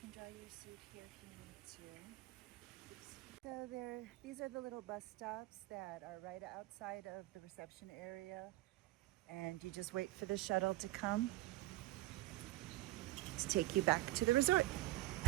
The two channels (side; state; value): left; quieter; 17.8 dB